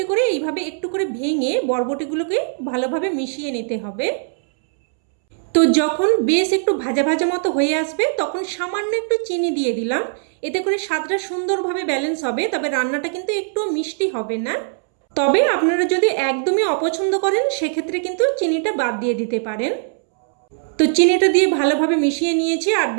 করে এইভাবে একটু করে ভেঙে বরবটিগুলোকে ভালোভাবে মিশিয়ে নিতে হবে। তো যখন বেশ একটু ভাজা ভাজা মতো হয়ে আসবে তখন সামান্য একটু চিনি দিয়ে দিলাম। এতে করে স্বাদটা সুন্দরভাবে ব্যালেন্স হবে, তবে রান্নাটা কিন্তু একটু মিষ্টি হবে না। তবে আপনারা যদি একদমই অপছন্দ করেন সেক্ষেত্রে কিন্তু চিনিটা বাদ দিয়ে দিতে পারেন। তো চিনিটা দিয়ে ভালোভাবে মিশিয়ে নিয়েছি, আর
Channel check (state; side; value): silent; left; 66 dB below the other